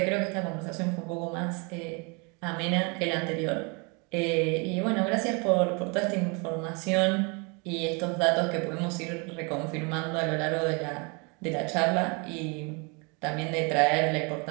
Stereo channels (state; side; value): quieter; left; 31.5 dB